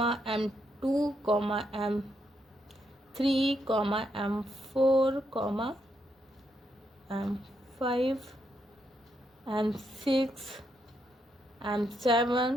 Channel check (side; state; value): both; normal; correlation 0.79